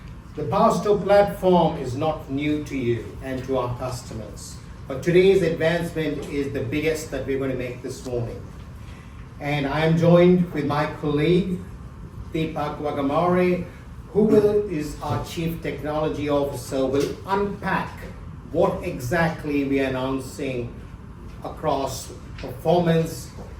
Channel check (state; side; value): identical; both; correlation 1.00